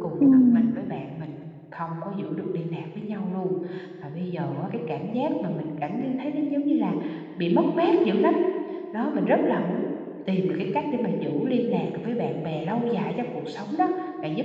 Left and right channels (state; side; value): identical; both; correlation 1.00